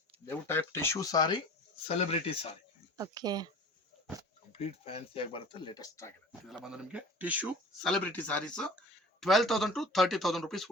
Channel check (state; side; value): normal; both; correlation 0.40